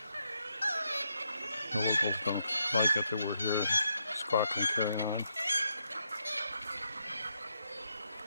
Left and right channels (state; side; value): inverted; both; correlation -0.80